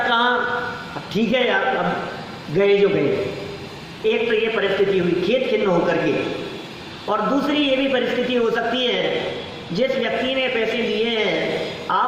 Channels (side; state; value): both; identical; correlation 1.00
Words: अब ठीक है यार, अब गए जो गए। एक तो ये परिस्थिति हुई खेत खिन्न होकर के, और दूसरी ये भी परिस्थिति हो सकती है, जिस व्यक्ति ने पैसे लिए हैं